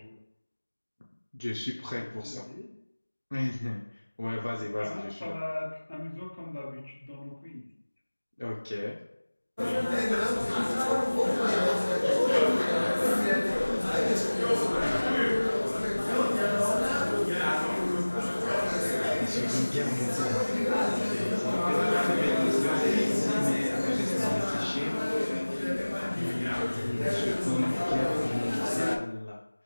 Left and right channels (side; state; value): both; inverted; correlation -1.00